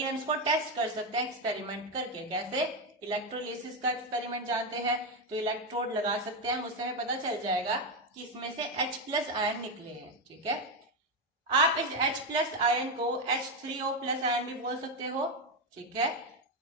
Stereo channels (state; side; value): normal; both; correlation 0.08